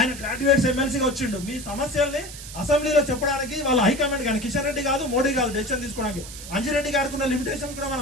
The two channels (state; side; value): noise; right; hiss, 13 dB below the sound